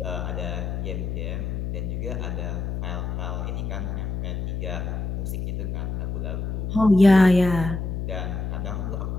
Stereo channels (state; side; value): noise; left; hum, 3 dB below the sound